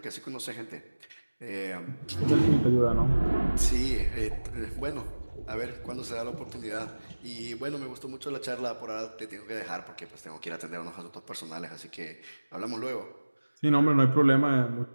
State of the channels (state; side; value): inverted; both; correlation -1.00